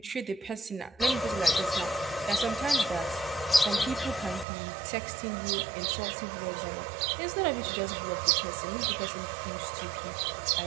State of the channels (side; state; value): left; drops out; at 4.5 s